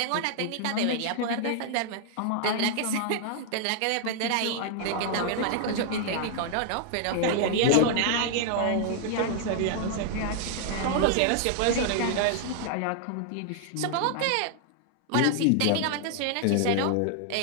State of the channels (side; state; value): both; different; correlation 0.00